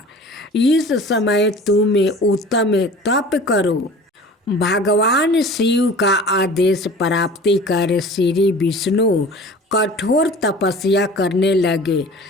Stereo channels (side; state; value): both; normal; correlation 0.42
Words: इस समय तुम उत्तम तप करो। भगवान शिव का आदेश प्राप्ति कर श्री विष्णु कठोर तपस्या करने लगे।